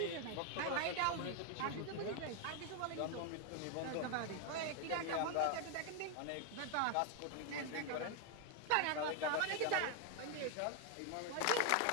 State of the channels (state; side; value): different; both; correlation 0.00